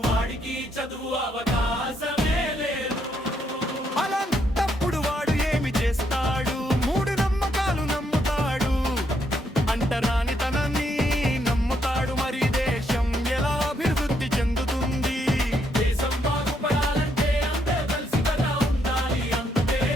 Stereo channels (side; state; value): both; normal; correlation 0.75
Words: వాడికి చదువు అవకాశమే లేదు. అలాంటప్పుడు వాడు ఏమి చేస్తాడు? 3 నమ్మకాలు నమ్ముతాడు, అంటరానితనాన్ని నమ్ముతాడు. మరి దేశం ఎలా అభివృద్ధి చెందుతుంది? దేశం బాగుపడాలంటే అందరూ కలిసి కదా ఉండాలి. అంతే